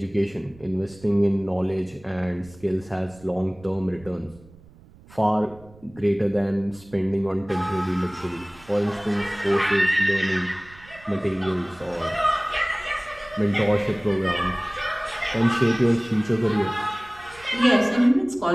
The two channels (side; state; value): right; noise; rumble, 24 dB below the sound